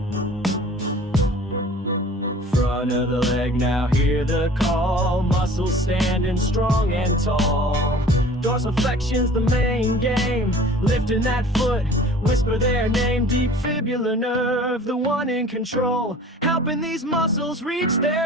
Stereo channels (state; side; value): normal; both; correlation 0.46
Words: Front of the leg, now hear the call. Muscles standing strong and tall. Dorsiflexion's the main game. Lifting that foot, whisper their name. Deep fibular nerve, the one in control, helping these muscles reach